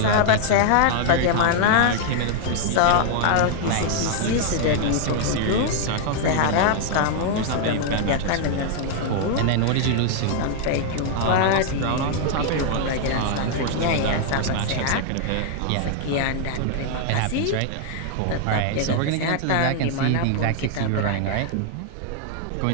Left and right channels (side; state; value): both; different; correlation -0.01